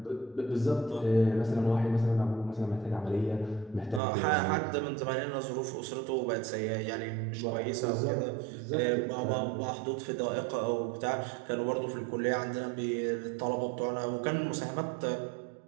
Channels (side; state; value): left; drops out; at 4.0 s